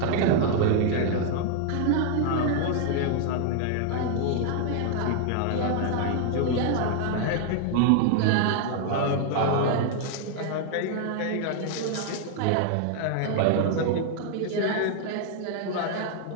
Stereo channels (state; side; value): different; both; correlation 0.00